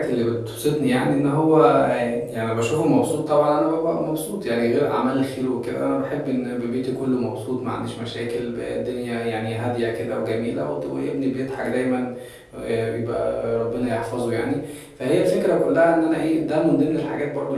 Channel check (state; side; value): identical; both; correlation 1.00